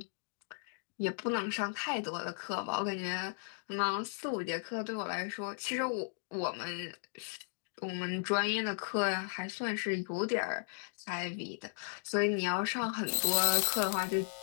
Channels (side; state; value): right; silent; digital silence